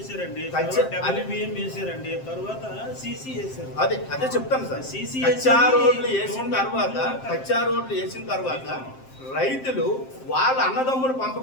WBM వేసారండి, తర్వాత సీసీ వేసారు. అదే చెప్తాను సార్. కచ్చా రోడ్లు వేసిన తర్వాత రైతులు వాళ్ళ అన్నదమ్ముల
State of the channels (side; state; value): right; late; 7.6 ms